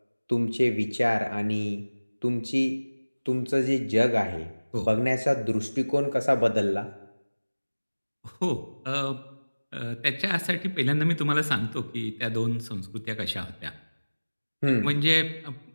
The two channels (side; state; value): both; inverted; correlation -1.00